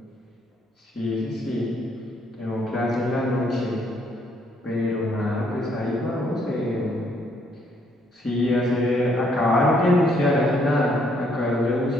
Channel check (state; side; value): normal; both; correlation 0.69